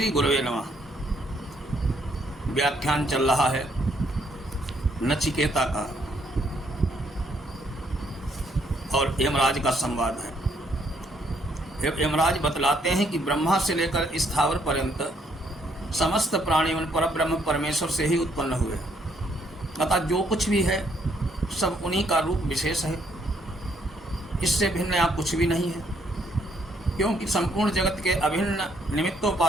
गुरुवे नमः। व्याख्यान चल रहा है नचिकेता का और यमराज का संवाद है। यमराज बतलाते हैं कि ब्रह्मा से लेकर स्थावर पर्यंत समस्त प्राणियों परब्रह्म परमेश्वर से ही उत्पन्न हुए, अतः जो कुछ भी है सब उन्हीं का रूप विशेष है। इससे भिन्न यहाँ कुछ भी नहीं है, क्योंकि संपूर्ण जगत के अभिन्न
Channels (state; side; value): normal; both; correlation 0.70